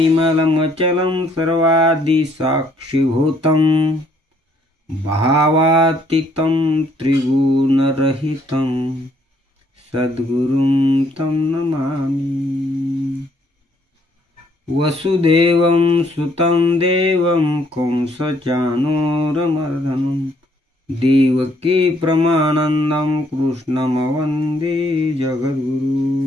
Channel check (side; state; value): both; normal; correlation 0.67